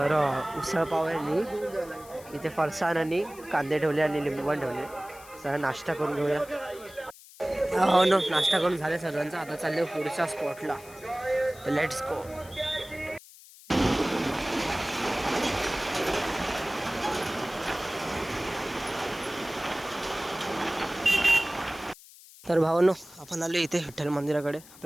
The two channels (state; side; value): noise; left; hiss, 20 dB below the sound